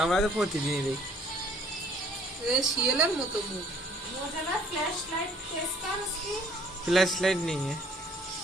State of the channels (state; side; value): normal; both; correlation 0.59